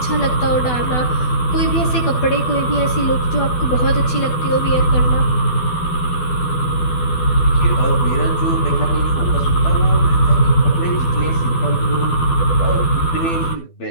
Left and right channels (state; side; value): late; right; 12 ms